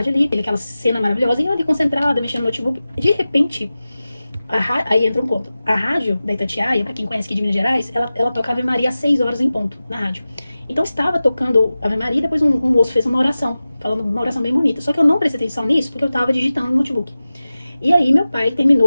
ali, aquela cena maravilhosa, e eu ali concentrada, mexendo no notebook. De repente, aí entra um ponto. A rádio da Itatiaia, pra quem conhece aqui de Minas Gerais, ela toca Ave Maria às 6 horas em ponto, na rádio. Então estava tocando Ave Maria e depois um moço fez uma oração, falando uma oração bem bonita. Só que eu não prestei atenção nisso porque eu tava digitando no notebook. E aí meu pai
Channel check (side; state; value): both; inverted; correlation -0.96